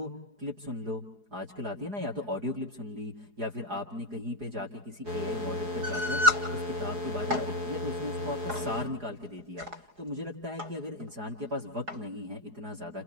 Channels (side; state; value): left; late; 4.8 ms